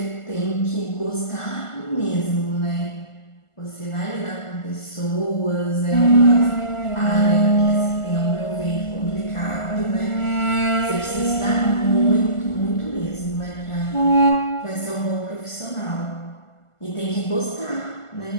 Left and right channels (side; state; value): right; late; 1.4 ms